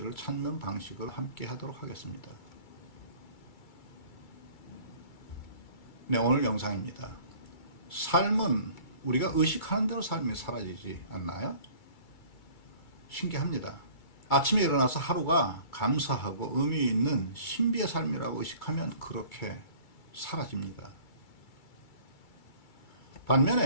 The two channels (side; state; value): right; late; 2.3 ms